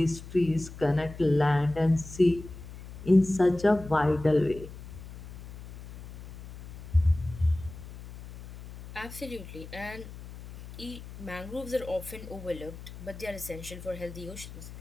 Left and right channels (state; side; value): noise; left; hum, 14 dB below the sound